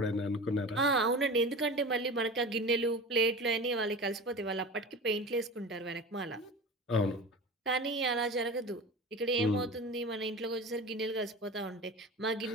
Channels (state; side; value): normal; both; correlation 0.33